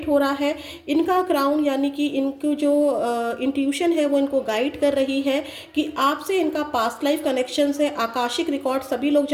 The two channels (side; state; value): both; identical; correlation 1.00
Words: हो रहा है। इनका क्राउन यानी कि इनकी जो इंट्यूशन है वो इनको गाइड कर रही है कि आपसे इनका पास्ट लाइफ कनेक्शन है। आकाशिक रिकॉर्ड सभी लोग